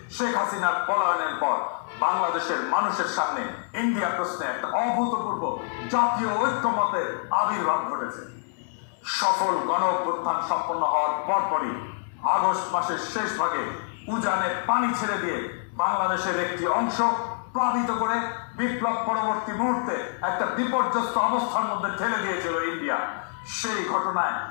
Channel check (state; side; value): silent; right; 61 dB below the other